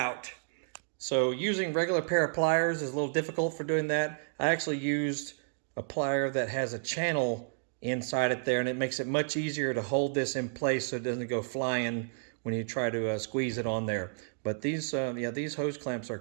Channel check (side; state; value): left; silent; digital silence